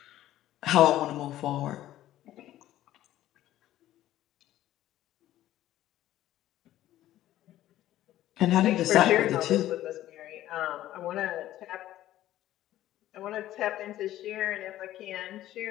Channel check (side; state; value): right; quieter; 13.8 dB